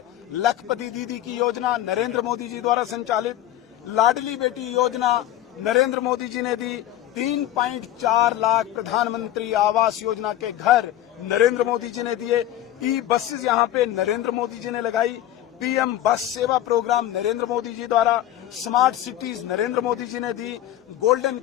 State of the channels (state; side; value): quieter; right; 12.9 dB